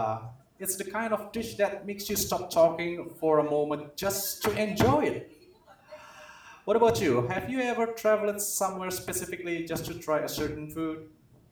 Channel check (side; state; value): both; identical; correlation 1.00